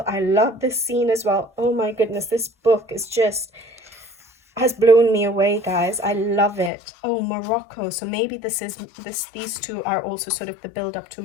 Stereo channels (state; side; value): drops out; right; at 6.7 s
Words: I love this scene as well. Oh my goodness, this book is just has blown me away, guys. I love it. Oh, Morocco. So maybe these two are also sort of the build up to